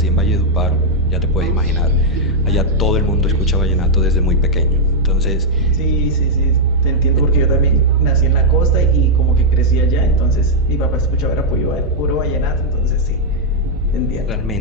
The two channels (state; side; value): normal; both; correlation -0.03